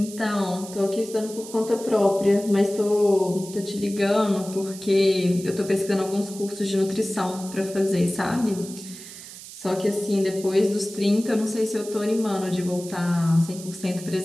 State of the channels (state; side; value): noise; right; hiss, 14 dB below the sound